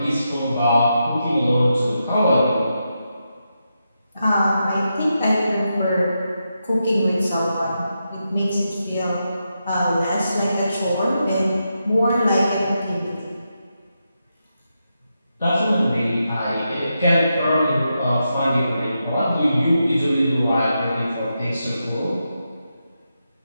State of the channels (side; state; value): both; inverted; correlation -0.86